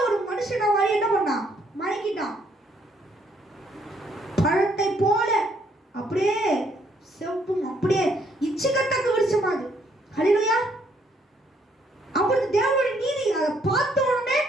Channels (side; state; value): both; normal; correlation 0.69